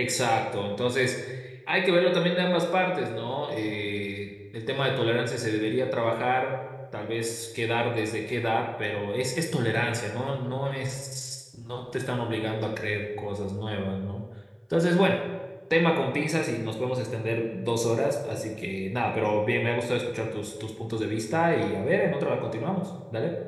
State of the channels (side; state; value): both; identical; correlation 1.00